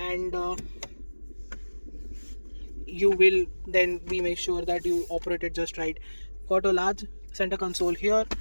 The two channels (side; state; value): both; inverted; correlation -1.00